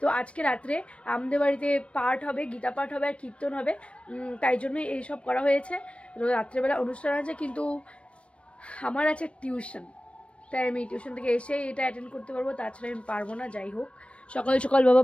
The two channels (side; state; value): right; late; 0.061 ms